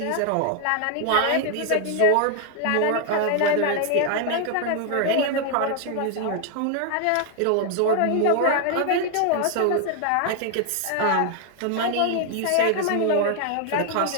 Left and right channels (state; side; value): different; both; correlation 0.00